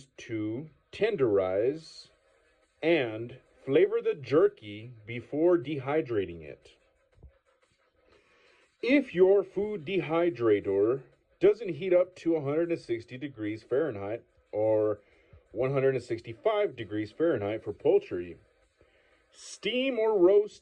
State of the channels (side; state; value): both; identical; correlation 1.00